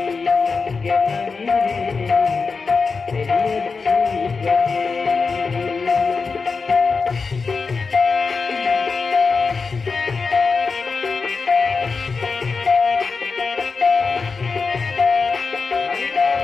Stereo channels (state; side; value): quieter; right; 4.7 dB